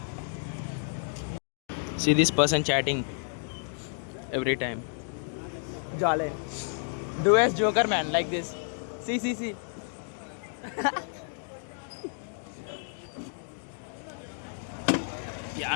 See this person chatting every time. Jale. Do as Joker, man, like this. See. Yeah,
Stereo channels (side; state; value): right; silent; 57 dB below the other